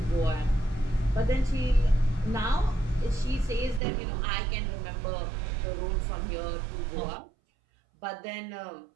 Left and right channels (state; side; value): drops out; left; at 3.8 s